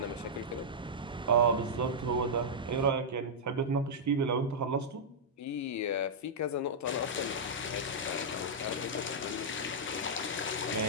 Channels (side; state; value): both; normal; correlation -0.09